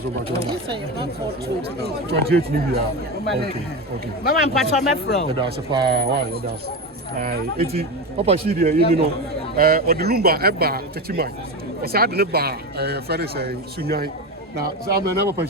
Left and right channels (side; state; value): both; normal; correlation 0.19